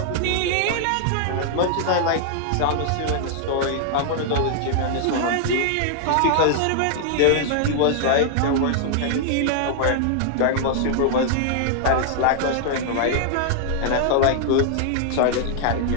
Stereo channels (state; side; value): different; both; correlation -0.01